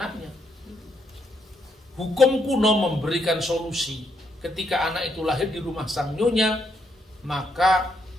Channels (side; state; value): both; normal; correlation 0.76